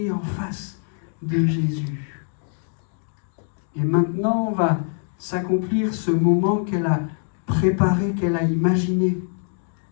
en face de Jésus. Et maintenant va s'accomplir ce moment qu'elle a préparé, qu'elle a imaginé.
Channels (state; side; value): silent; right; 63 dB below the other